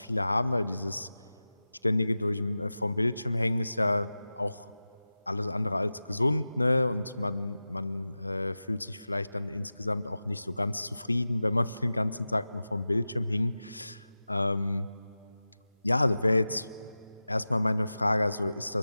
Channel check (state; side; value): inverted; both; correlation -0.95